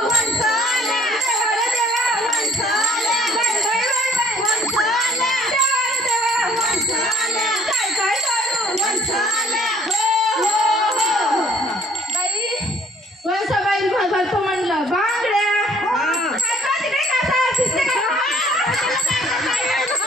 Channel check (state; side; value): normal; both; correlation 0.59